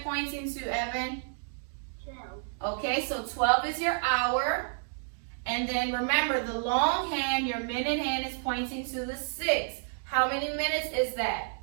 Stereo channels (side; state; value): left; silent; digital silence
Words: pointing to, Evan? 12. Okay, so 12 is your hour. And then remember, the long hand, your minute hand, is pointing to the 6. How many minutes is that?